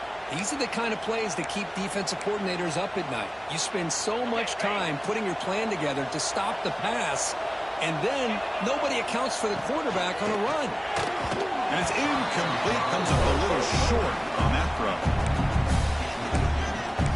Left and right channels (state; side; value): identical; both; correlation 1.00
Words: These are the kind of plays that keep defensive coordinators up at night. You spend so much time putting your plan together to stop the pass, and then nobody accounts for the quarterback on a run. And it's incomplete. Comes up a little short on that throw.